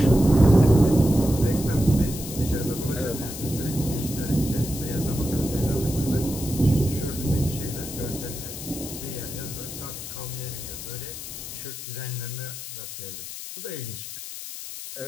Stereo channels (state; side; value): noise; left; hiss, 9 dB below the sound